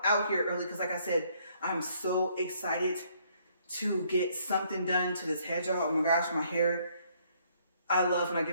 here early because, like I said, I'm so excited to get something done to this head, y'all. Oh my gosh, my hair. I love when I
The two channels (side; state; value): both; inverted; correlation -0.67